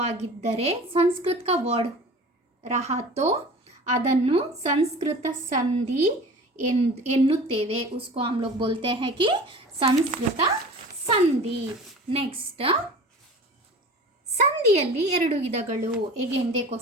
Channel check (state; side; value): normal; both; correlation 0.40